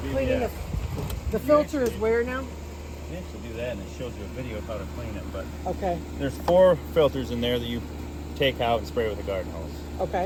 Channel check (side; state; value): both; identical; correlation 1.00